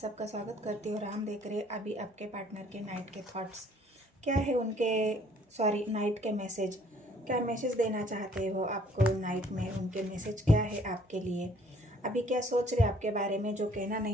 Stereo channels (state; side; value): normal; both; correlation 0.59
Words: स्वागत करती हूँ और हम देख रहे हैं अभी आपके पार्टनर के नाइट के थॉट्स क्या है उनके नाइट के मैसेज। क्या मैसेज देना चाहते हो आपको नाइट में, उनके मैसेज क्या है आपके लिए, अभी क्या सोच रहे आपके बारे में, जो कहना